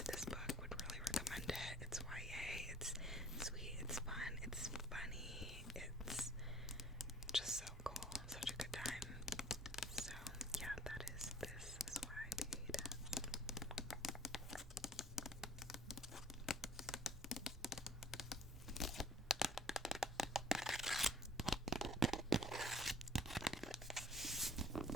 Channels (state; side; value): normal; both; correlation 0.54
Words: this book, would really recommend it. It's YA, it's sweet, it's fun, it's funny, it's just so cool, such a good time. So yeah, this is why I paid.